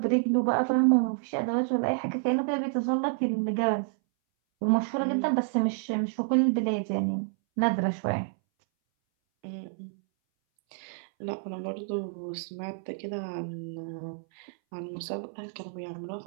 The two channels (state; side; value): silent; left; 59 dB below the other